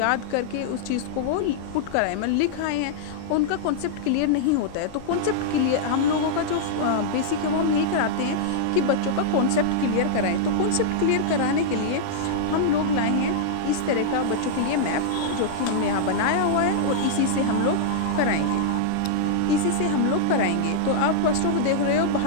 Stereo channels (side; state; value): both; different; correlation -0.02